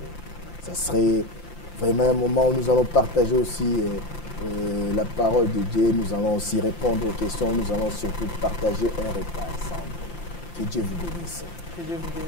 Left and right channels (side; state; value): right; late; 5.8 ms